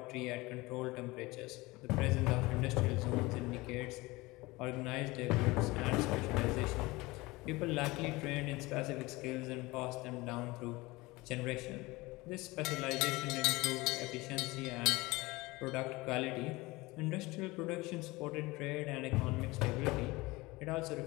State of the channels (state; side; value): quieter; right; 21.7 dB